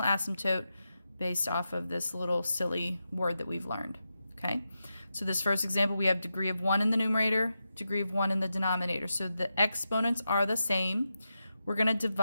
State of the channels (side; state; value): both; inverted; correlation -0.89